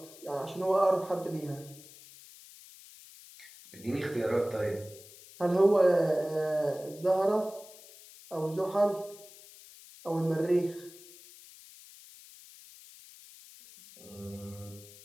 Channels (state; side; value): noise; left; hiss, 20 dB below the sound